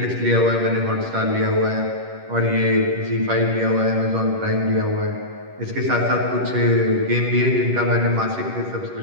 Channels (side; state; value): left; late; 11 ms